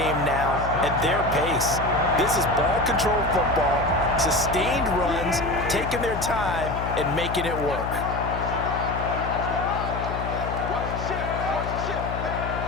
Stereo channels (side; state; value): left; noise; hum, 6 dB below the sound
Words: now at their pace. This is ball control football, sustained runs, taking their time and making it work.